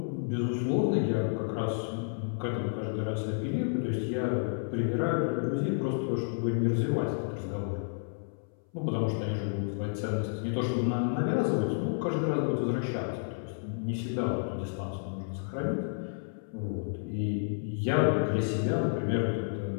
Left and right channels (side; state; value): right; silent; 57 dB below the other